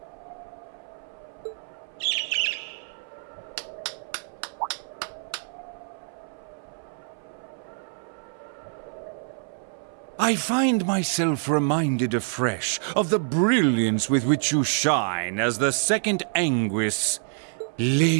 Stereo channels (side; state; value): left; silent; 60 dB below the other